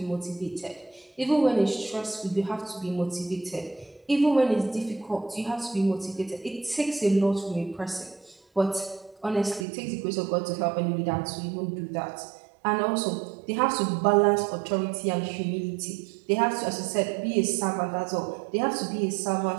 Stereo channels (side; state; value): left; drops out; at 9.7 s